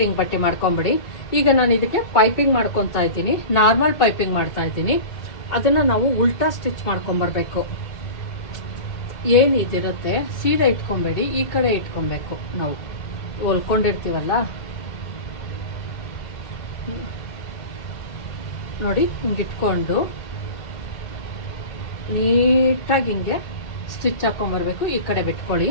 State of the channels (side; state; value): right; late; 2.3 ms